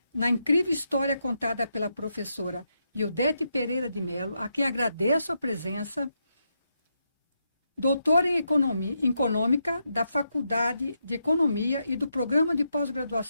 na incrível história contada pela professora Ildete Pereira de Mello, a quem agradeço a presença, doutora em Econômica da Faculdade de Economia e do Programa de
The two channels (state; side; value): inverted; both; correlation -0.82